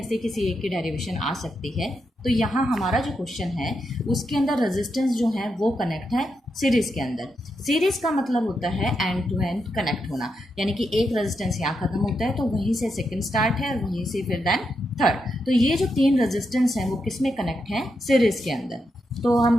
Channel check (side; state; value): both; normal; correlation 0.84